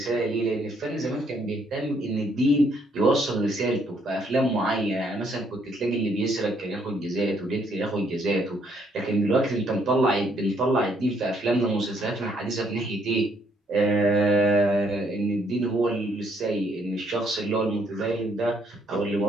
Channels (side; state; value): both; normal; correlation 0.69